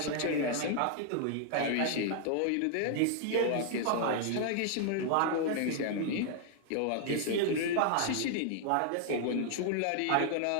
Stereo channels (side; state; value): both; different; correlation 0.00